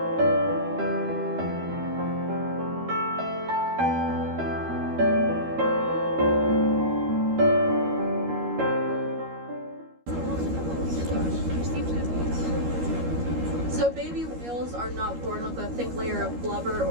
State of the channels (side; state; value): left; late; 13 ms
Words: So baby whales are not born with a thick layer of blubber